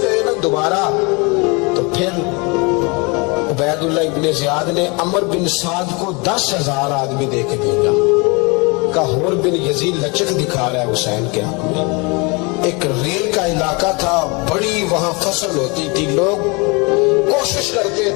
کہے نا دوبارہ تو پھر عبیداللہ ابن زیاد نے عمر بن سعد کو 10,000 آدمی دے کے بھیجا، کہا حر بن یزید لچک دکھا رہا ہے حسین کے حق میں۔ ایک ریل کا علاقہ تھا، بڑی وہاں فصل ہوتی تھی، لوگ کوشش کرتے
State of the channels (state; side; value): quieter; right; 29.1 dB